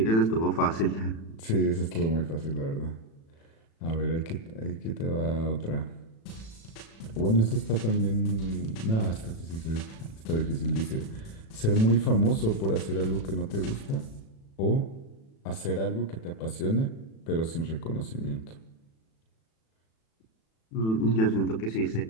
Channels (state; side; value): late; right; 36 ms